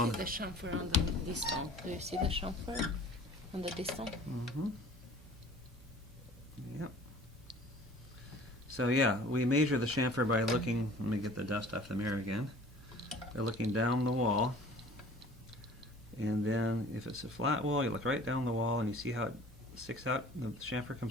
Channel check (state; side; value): normal; both; correlation 0.47